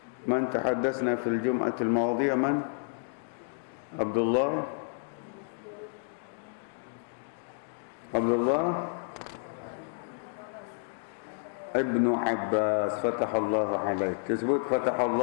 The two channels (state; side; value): silent; right; digital silence